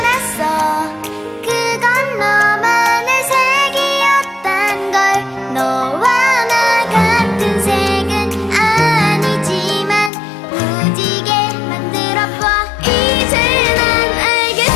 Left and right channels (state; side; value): drops out; right; at 10.1 s